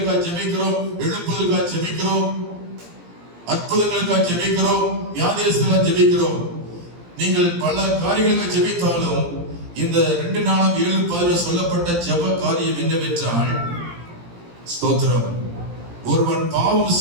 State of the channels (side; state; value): left; late; 17 ms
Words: ஜெபிக்கிறோம், எழுப்புதலுக்காக ஜெபிக்கிறோம், அற்புதங்களுக்காக ஜெபிக்கிறோம், வியாதியஸ்தலுக்காக ஜெபிக்கிறோம். நீங்கள் பல காரியங்களுக்காக ஜெபித்தாலும் இந்த 2 நாளாம் 7:10 சொல்லப்பட்ட ஜெப காரியம் என்னவென்றால், ஸ்தோத்திரம், ஒருவன் பாவம்